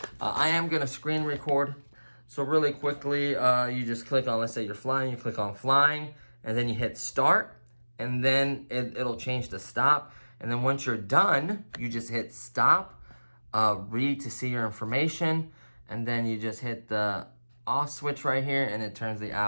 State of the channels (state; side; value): inverted; both; correlation -1.00